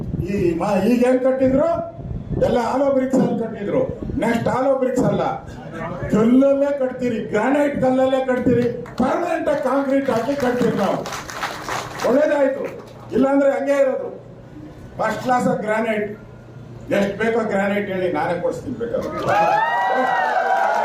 ಈಗೇನ್ ಕಟ್ಟಿದ್ರು ಎಲ್ಲ ಆಲೋ ಬ್ರಿಕ್ಸ್ ಅಲ್ಲಿ ಕಟ್ಟಿದ್ರು. ನೆಕ್ಸ್ಟ್ ಆಲೋ ಬ್ರಿಕ್ಸ್ ಅಲ್ಲ, ಕಲ್ಲಲ್ಲೇ ಕಟ್ತೀರಿ, ಗ್ರಾನೈಟ್ ಕಲ್ಲಲ್ಲೇ ಕಟ್ತೀರಿ, ಪರ್ಮನೆಂಟ್ ಆಗಿ ಕಾಂಕ್ರೀಟ್ ಹಾಕಿ ಕಟ್ತೀರಿ ನಾವು. ಒಳ್ಳೇದಾಯ್ತು. ಇಲ್ಲಾಂದ್ರೆ ಹಂಗೆ ಇರೋದು. First class of granite. ಎಷ್ಟು ಬೇಕೋ ಗ್ರಾನೈಟ್ ಹೇಳಿ, ನಾನೇ ಕೊಡಿಸ್ತೀನಿ ಬೇಕಾದ್ರೆ.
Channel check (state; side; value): identical; both; correlation 1.00